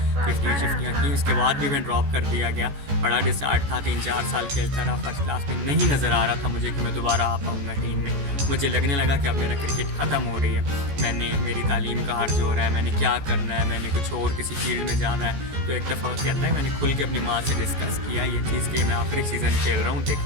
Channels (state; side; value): late; left; 14 ms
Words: 50-50 की, उसके बाद भी मैं ड्रॉप कर दिया गया। बड़ा डिसहार्ट था, 3-4 साल खेलता रहा, फर्स्ट क्लास में नहीं नज़र आ रहा था मुझे कि मैं दोबारा आ पाऊँगा टीम में। मुझे लगने लगा कि अब मेरा क्रिकेट ख़त्म हो रही है, मेरी तालीम का हर्ज हो रहा है, मैंने क्या करना है, मैंने कुछ और किसी फील्ड में जाना है। तो एक दफ़ा कहता है मैंने खुल के अपनी माँ से डिस्कस किया ये चीज़ कि मैं आखिरी सीज़न खेल रहा हूँ,